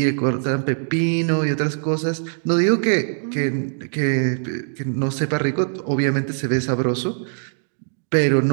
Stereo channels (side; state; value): left; silent; digital silence